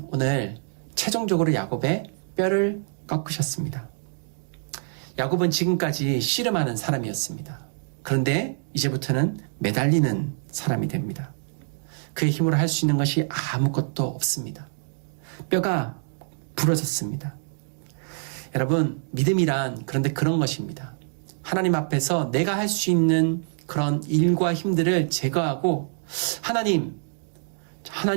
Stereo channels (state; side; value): silent; left; 61 dB below the other